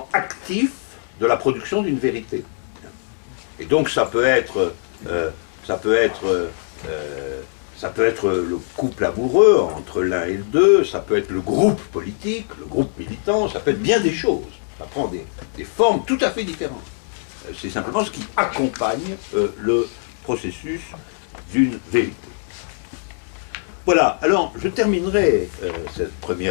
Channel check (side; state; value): right; silent; 65 dB below the other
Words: actif de la production d'une vérité. Et donc ça peut être le couple amoureux entre l'un et le deux, ça peut être le groupe politique, le groupe militant, ça peut être bien des choses. Ça prend des formes tout à fait différentes. C'est simplement ce qui accompagne le processus d'une vérité. Voilà, alors je terminerai cette